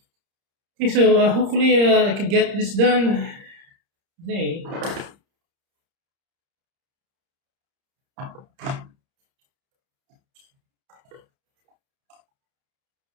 Okay, so hopefully I can get this done today.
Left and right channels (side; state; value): left; late; 30 ms